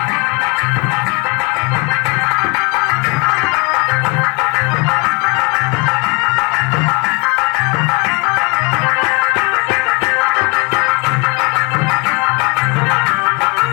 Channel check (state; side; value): quieter; right; 29.9 dB